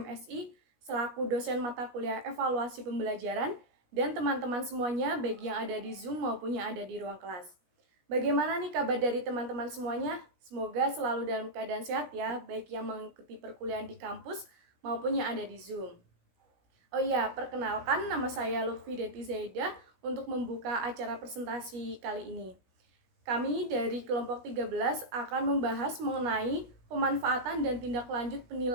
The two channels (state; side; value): late; left; 17 ms